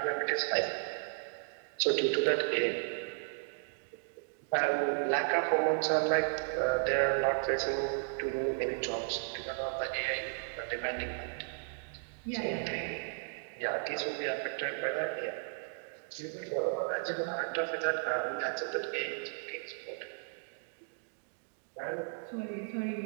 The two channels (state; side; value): silent; left; digital silence